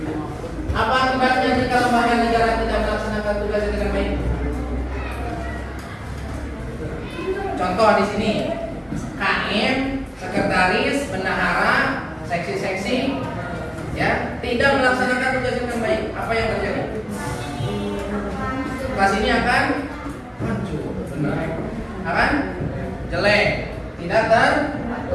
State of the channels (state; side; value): identical; both; correlation 1.00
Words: Apa akibatnya jika lembaga negara tidak melaksanakan tugasnya dengan baik? Contoh di sini, KM, sekretaris, bendahara, seksi-seksi, ya, tidak melaksanakan tugasnya dengan baik. Apa yang terjadi? Kelas ini akan hancur, benar. Akan jelek, tidak